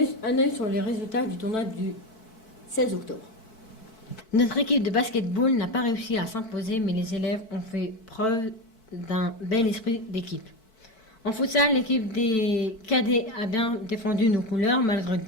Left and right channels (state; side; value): late; right; 4.6 ms